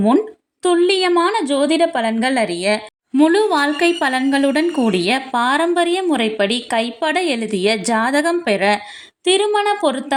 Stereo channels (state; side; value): identical; both; correlation 1.00